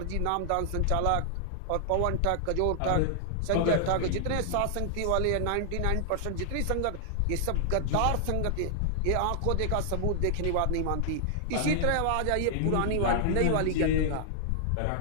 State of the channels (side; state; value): both; different; correlation -0.01